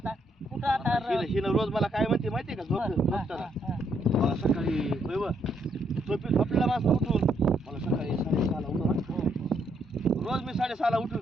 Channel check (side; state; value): both; normal; correlation 0.74